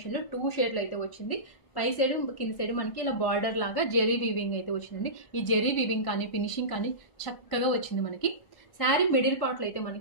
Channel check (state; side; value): late; right; 1.1 ms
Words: లో 2 షేడ్లు అయితే వచ్చింది. పై సైడ్ కింద సైడ్ మనకి ఇలా బార్డర్ లాగా జెరీ వీవింగ్ అయితే వచ్చిందండి. ఈ జెరీ వీవింగ్ కానీ ఫినిషింగ్ కానీ చక్కగా వచ్చింది మనకి. శారీ మిడిల్ పార్ట్ లో అయితే